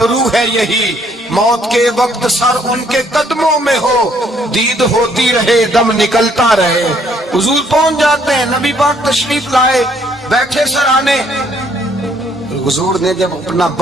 ہے یہی, موت کے وقت سر ان کے قدموں میں ہو, دید ہوتی رہے دم نکلتا رہے. حضور پہنچ جاتے ہیں, نبی پاک تشریف لائے, بیٹھے سرانے. حضور نے جب اپنا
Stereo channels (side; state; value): both; normal; correlation 0.66